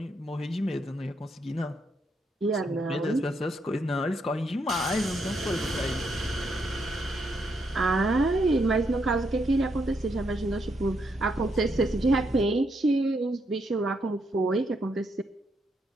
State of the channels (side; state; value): both; normal; correlation 0.77